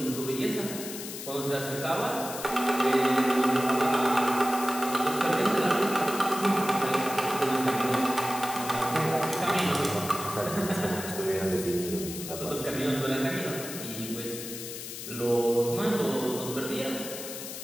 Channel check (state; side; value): noise; left; hiss, 9 dB below the sound